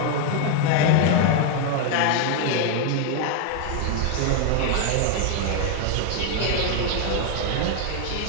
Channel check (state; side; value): different; both; correlation 0.00